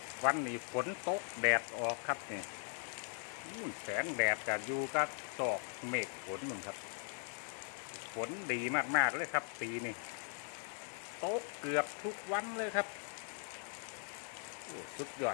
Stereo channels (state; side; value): silent; right; 51 dB below the other